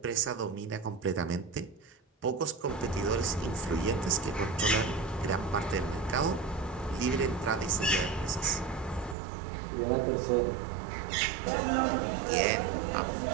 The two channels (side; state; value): left; drops out; at 9.2 s